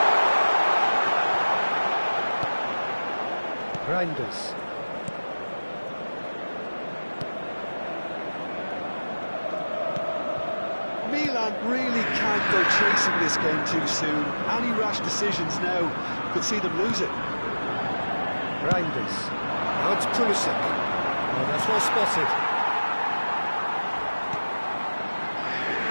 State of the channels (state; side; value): inverted; both; correlation -1.00